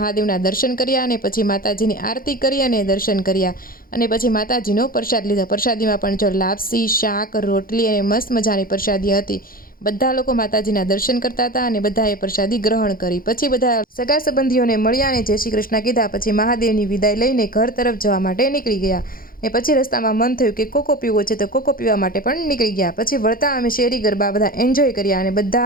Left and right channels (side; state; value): right; late; 0.42 ms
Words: દર્શન કર્યા અને પછી માતાજીની આરતી કરી અને દર્શન કર્યા અને પછી માતાજીનો પ્રસાદ લીધો। પ્રસાદીમાં પણ જો લાપસી, શાક, રોટલી અને મસ્ત મજાની પ્રસાદી હતી। બધા લોકો માતાજીના દર્શન કરતા હતા અને બધાએ પ્રસાદી ગ્રહણ કરી। પછી બધા સગા સંબંધીઓને મળ્યા અને જય શ્રી કૃષ્ણ કીધા। પછી મહાદેવની વિદાય લઈને ઘર તરફ જવા માટે નીકળી ગયા ને પછી રસ્તામાં મન થયું કે કોકો પીવો છે, તો કોકો પીવા માટે પણ નીકળી ગયા। પછી વળતા અમે શેરી ગરબા બધા એન્જોય કર્યા અને